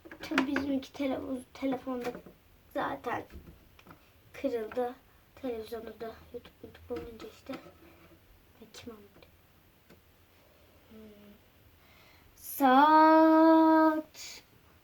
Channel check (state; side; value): identical; both; correlation 1.00